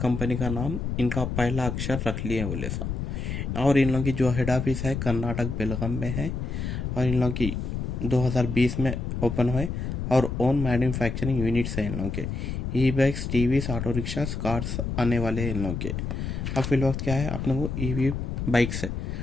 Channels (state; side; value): noise; left; rumble, 3 dB below the sound